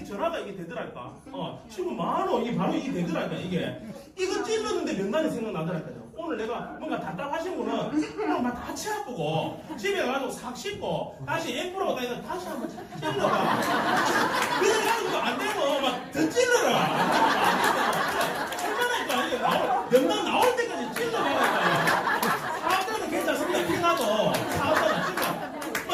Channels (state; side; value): identical; both; correlation 1.00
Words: 전화가 이게 되더랄까. 친구 많어 이게 바로 이게 되더랄까. 이거 찔렀는데 명단이 생각나더랄까요. 오늘 내가 뭔가 답답하신 분은 오늘 막 다치 아프고 집에 가서 싹 씻고 다시 앰프라고 다니까 다시 한번 찔러봐. 그래가지고 안 되고 막 더 찔러라. 얼마나 이게 명단 나올 때까지 찔러봐라. 사업자는 괜찮습니다. 피나도 사업자는